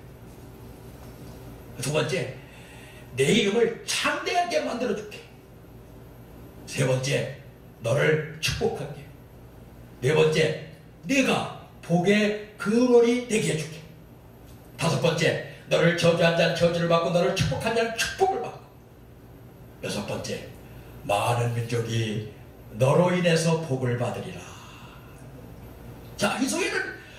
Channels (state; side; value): identical; both; correlation 1.00